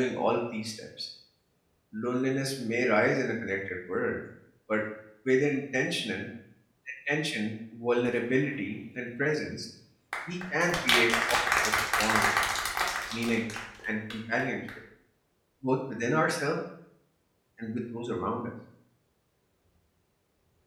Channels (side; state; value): both; identical; correlation 1.00